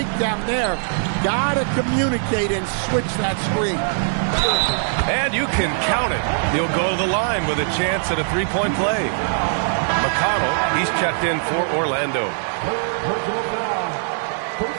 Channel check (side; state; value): left; silent; 65 dB below the other